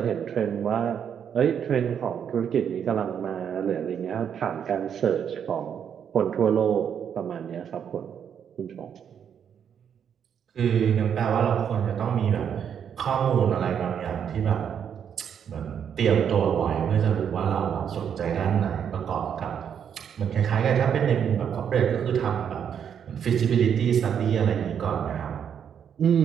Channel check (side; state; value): left; quieter; 8.2 dB